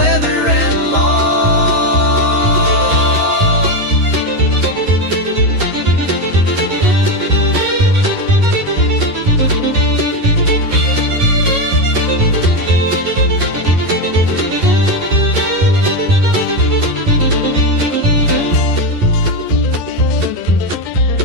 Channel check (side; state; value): left; late; 11 ms